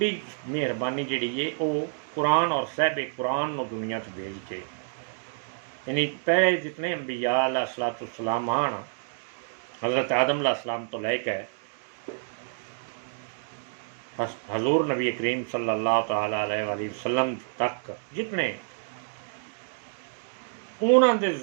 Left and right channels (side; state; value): left; silent; digital silence